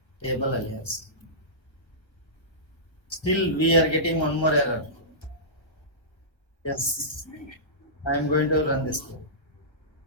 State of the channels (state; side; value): late; right; 1.4 ms